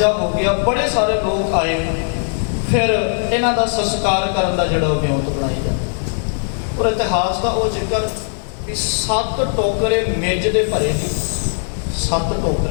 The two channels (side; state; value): right; silent; digital silence